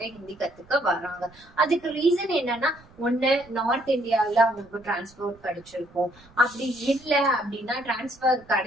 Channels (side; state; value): right; noise; rumble, 26 dB below the sound